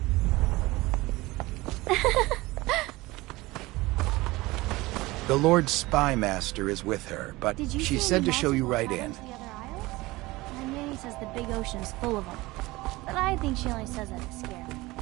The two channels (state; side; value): quieter; left; 20.5 dB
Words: The Lord Spy Master is with her, but she said to show you right in. My nanny says the big ocean's full of them, but I think she only says that to scare me.